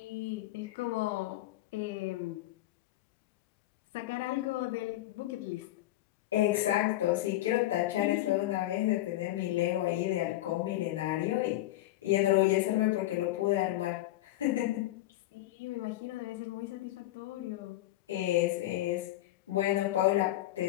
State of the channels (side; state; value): right; quieter; 15.7 dB